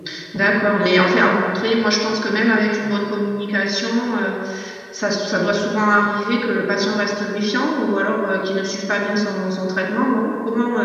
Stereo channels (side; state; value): both; identical; correlation 1.00